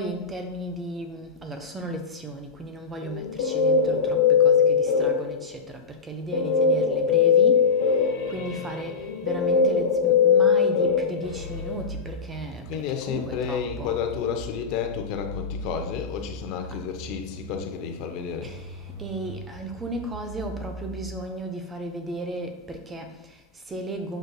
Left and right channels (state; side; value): quieter; right; 5.0 dB